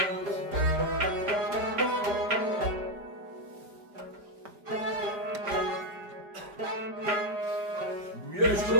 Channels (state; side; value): late; left; 5.0 ms